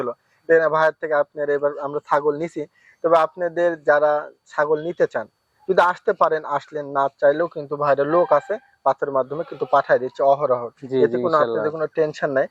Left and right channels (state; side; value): identical; both; correlation 1.00